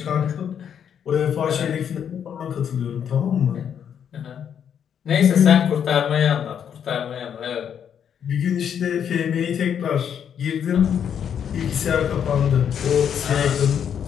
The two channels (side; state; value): right; quieter; 8.4 dB